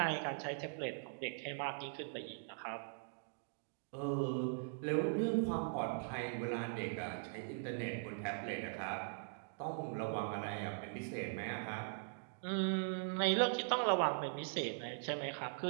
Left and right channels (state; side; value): silent; left; digital silence